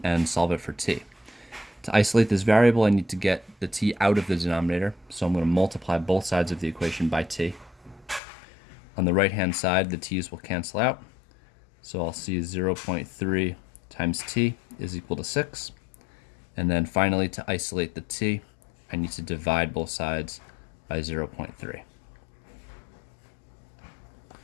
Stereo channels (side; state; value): right; drops out; at 8.2 s